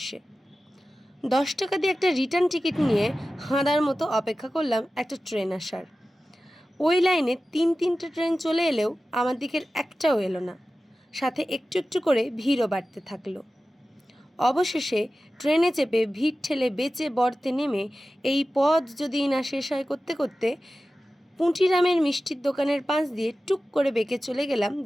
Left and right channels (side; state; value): both; normal; correlation 0.95